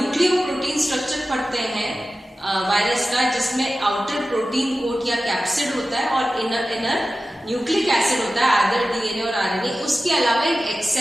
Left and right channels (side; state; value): both; normal; correlation 0.94